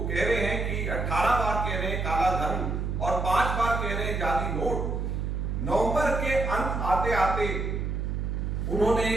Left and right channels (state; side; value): noise; right; hum, 1 dB below the sound